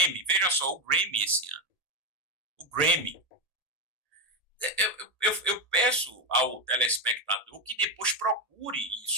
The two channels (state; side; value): late; right; 1.8 ms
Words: veja só, o Grammy esse ano. O Grammy. Eu peço ao telespectador que depois procure